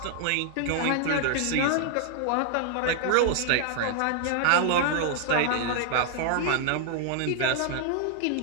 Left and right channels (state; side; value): different; both; correlation 0.00